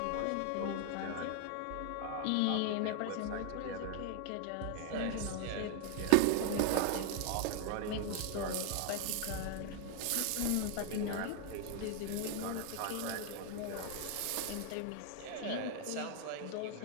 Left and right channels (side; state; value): both; different; correlation 0.00